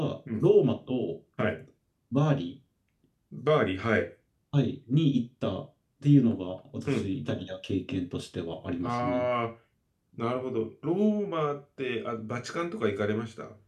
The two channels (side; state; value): both; identical; correlation 1.00